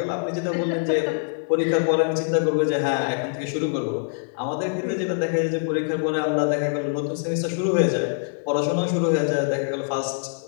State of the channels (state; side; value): silent; right; digital silence